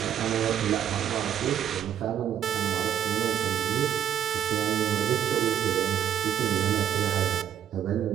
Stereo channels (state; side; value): quieter; left; 9.8 dB